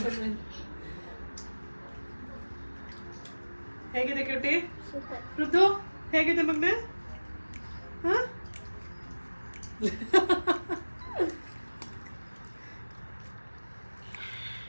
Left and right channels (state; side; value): inverted; both; correlation -1.00